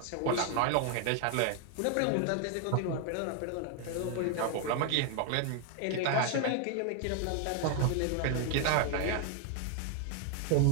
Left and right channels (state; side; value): different; both; correlation 0.01